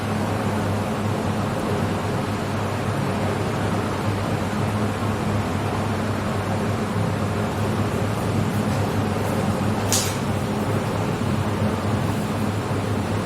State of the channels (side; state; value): both; identical; correlation 1.00